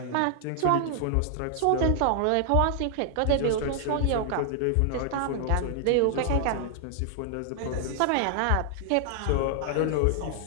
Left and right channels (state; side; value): different; both; correlation 0.00